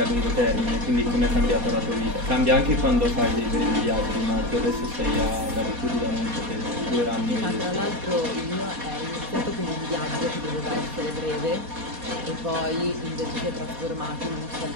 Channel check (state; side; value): late; left; 4.2 ms